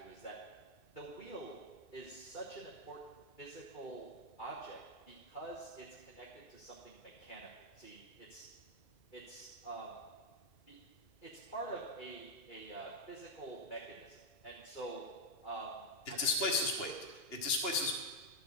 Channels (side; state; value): right; late; 2.8 ms